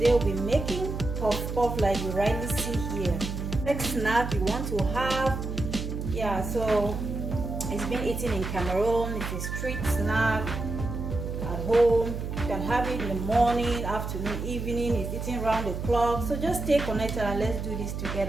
we'll be making puff puff like you rightly see here. Next snack you want to have, so it's been eaten in Cameroon. It's a street snack at home. You can have it in the morning, afternoon, evening. It's eaten round the clock. So just stay connected and let's do this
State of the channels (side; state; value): right; noise; hum, 5 dB below the sound